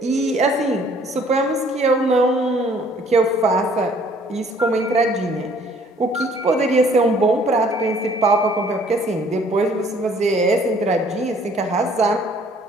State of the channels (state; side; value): normal; both; correlation 0.59